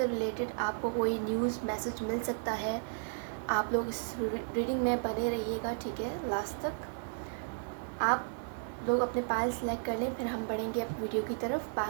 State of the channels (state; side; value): silent; left; digital silence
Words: रिलेटेड आपको कोई न्यूज़ मैसेज मिल सकता है। आप लोग इस रीडिंग में बने रहिएगा, ठीक है, लास्ट तक। आप लोग अपने पाइल सेलेक्ट कर लें, फिर हम बढ़ेंगे अब वीडियो की तरफ।